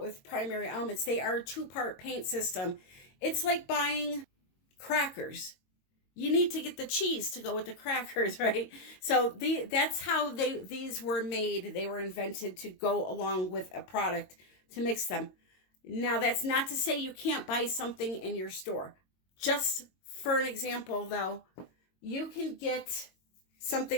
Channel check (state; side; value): late; right; 22 ms